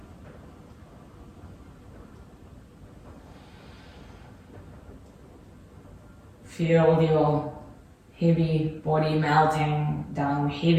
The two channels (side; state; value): both; identical; correlation 1.00